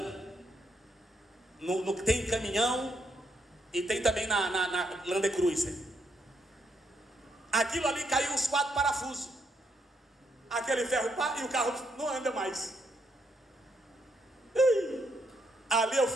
Tem caminhão e tem também na Land Cruiser. Aquilo ali caiu os 4 parafusos. Aquele ferro pá, e o carro não anda mais. Ali eu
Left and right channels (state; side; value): normal; both; correlation 0.76